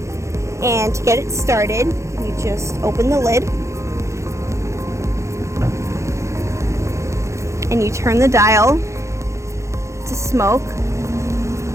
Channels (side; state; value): left; late; 0.14 ms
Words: and to get it started you just open the lid and you turn the dial to smoke,